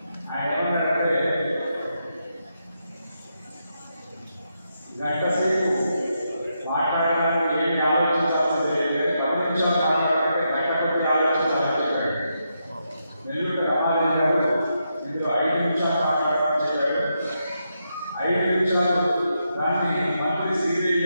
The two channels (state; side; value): inverted; both; correlation -0.83